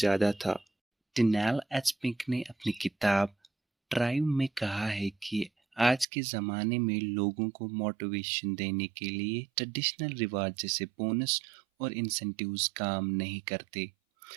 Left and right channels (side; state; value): left; drops out; at 6.1 s